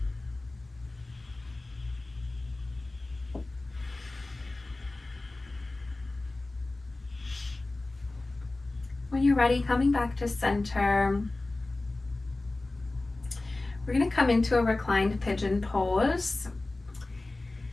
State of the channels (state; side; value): quieter; right; 3.0 dB